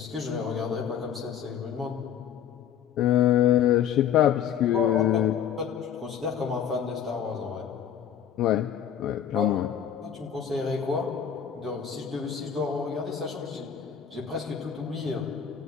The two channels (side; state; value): right; quieter; 8.8 dB